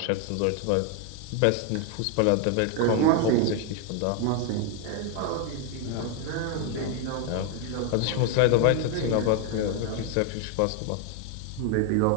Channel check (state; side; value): different; both; correlation 0.01